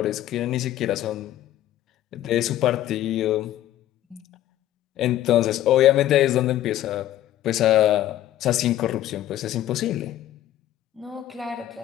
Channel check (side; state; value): right; quieter; 13.1 dB